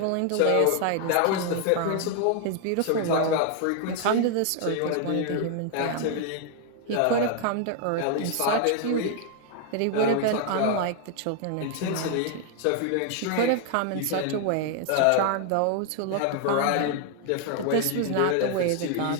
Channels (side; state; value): both; different; correlation 0.00